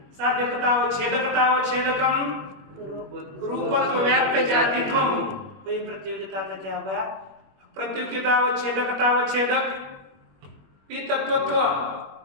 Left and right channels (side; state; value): left; late; 21 ms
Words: साध्यतावच्छेदकतावच्छेदकम रूपत्व व्याप्य जातित्वम। कोई प्रतियोगिता का क्या होगा? प्रतियोगितावच्छेदकतावच्छेदक पीतत्वत्व